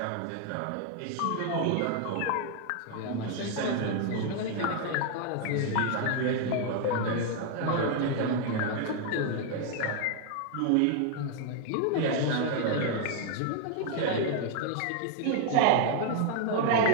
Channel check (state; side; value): different; both; correlation 0.00